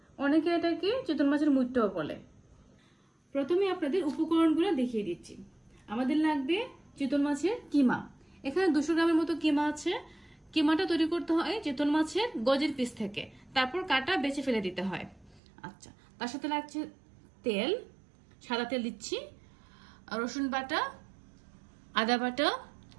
অনেকে এটাকে চিতল মাছের মুইট্টাও বলে। প্রথমে আপনাদের উপকরণগুলো দেখিয়ে দিচ্ছি। আমাদের লাগবে চিতল মাছের কিমা। এখানে 200 গ্রামের মতো কিমা আছে। কিমাটা তৈরি করতে হয় চিতল মাছের গজের পিস থেকে, তারপর কাটা বেছে ফেলে দিতে হয়। আচ্ছা, তার সাথে লাগছে তেল, সাদা তেল দিচ্ছি, রসুন বাটা, আদা বাটা,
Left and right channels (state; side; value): drops out; left; at 15.4 s